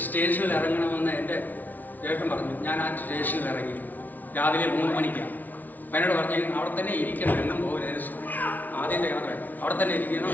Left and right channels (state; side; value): late; right; 0.081 ms